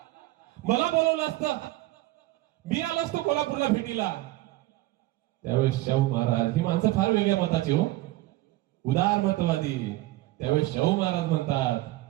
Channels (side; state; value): left; quieter; 17.9 dB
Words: मला बोलवलं असतं, मी आलो असतो कोल्हापूरला भेटीला. त्यावेळेस शाहू महाराज, ही माणसं फार वेगळ्या मताची हो, उदार मतवादी. त्यावेळेस शाहू महाराज म्हणतात,